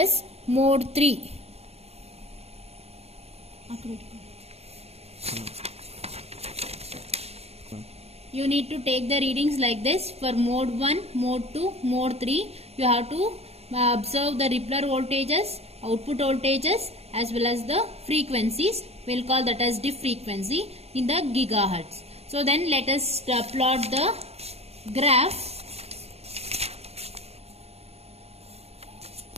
mode 3. You need to take the readings like this for mode 1, mode 2, mode 3. You have to observe the Rippler voltages, output voltages as well as the frequencies. We will call that as dip frequency in the gigahertz. So then let us plot the graph.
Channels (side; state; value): left; late; 0.30 ms